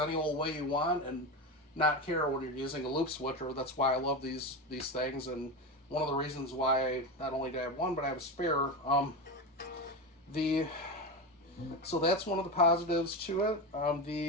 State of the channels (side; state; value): both; normal; correlation 0.18